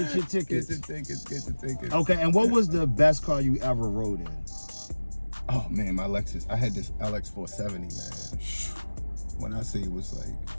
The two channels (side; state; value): both; inverted; correlation -1.00